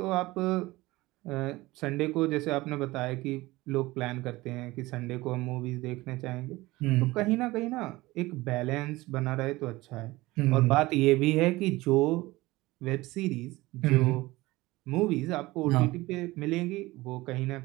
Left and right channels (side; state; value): left; quieter; 19.8 dB